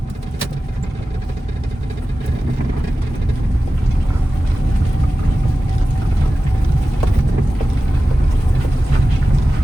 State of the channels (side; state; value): both; normal; correlation 0.95